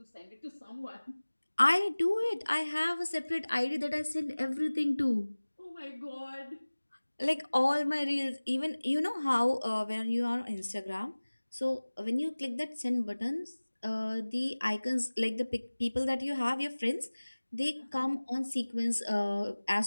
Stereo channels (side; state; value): both; inverted; correlation -1.00